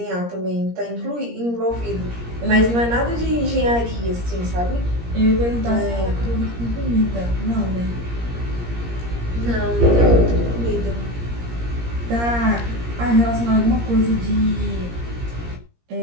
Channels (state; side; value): late; left; 17 ms